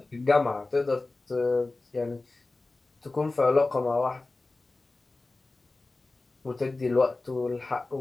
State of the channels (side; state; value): right; quieter; 3.3 dB